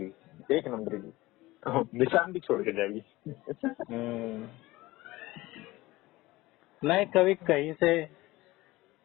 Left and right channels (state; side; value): quieter; right; 19.2 dB